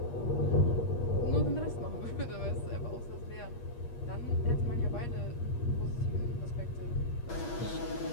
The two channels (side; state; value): right; late; 8.4 ms